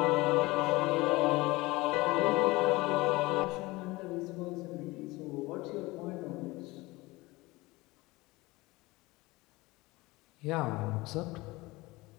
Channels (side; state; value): right; quieter; 21.5 dB